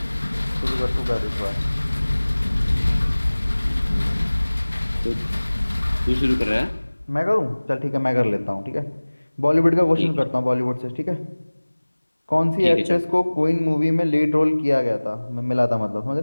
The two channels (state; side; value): inverted; both; correlation -1.00